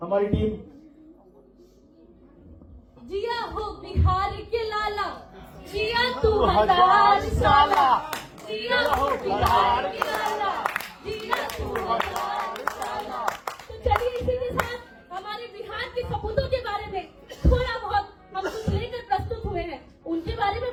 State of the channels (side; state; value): both; identical; correlation 1.00